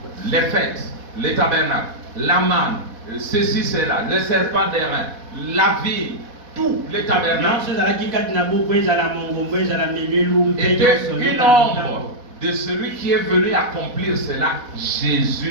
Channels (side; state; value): left; late; 4.1 ms